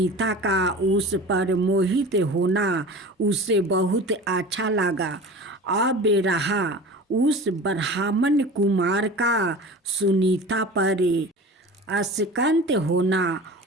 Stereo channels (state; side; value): normal; both; correlation 0.36